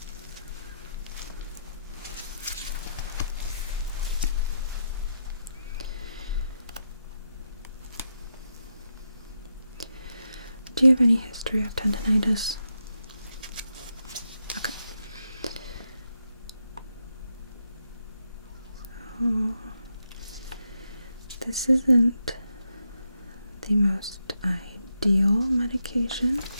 Do you have any history of tendinitis? Okay. So, this isn't the most ideal medication.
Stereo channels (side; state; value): both; inverted; correlation -0.83